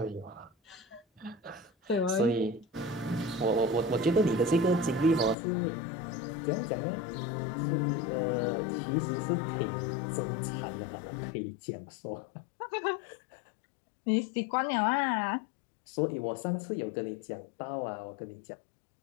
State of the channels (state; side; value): drops out; right; at 5.4 s